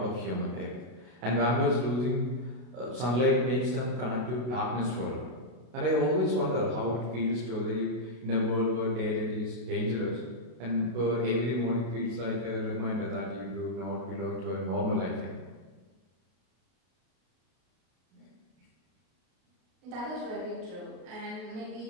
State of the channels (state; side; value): late; left; 32 ms